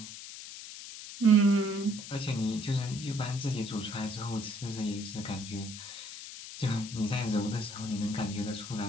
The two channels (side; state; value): left; noise; hiss, 11 dB below the sound